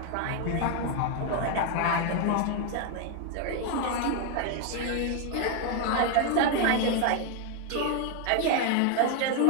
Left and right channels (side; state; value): both; different; correlation 0.01